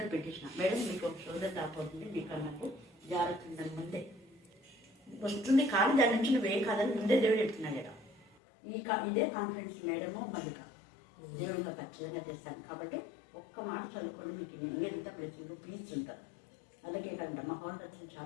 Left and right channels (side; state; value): right; drops out; at 8.3 s